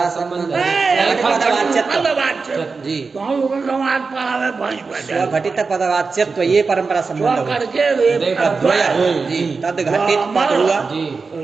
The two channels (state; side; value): quieter; left; 4.5 dB